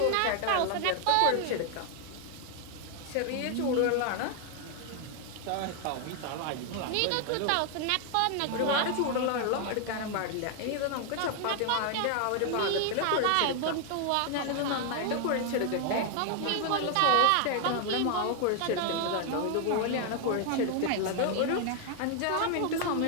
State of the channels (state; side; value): different; both; correlation 0.00